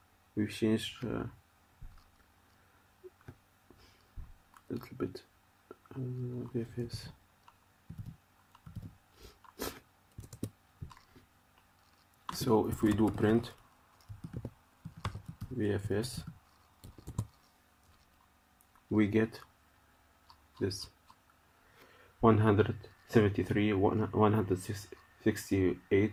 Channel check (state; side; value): identical; both; correlation 1.00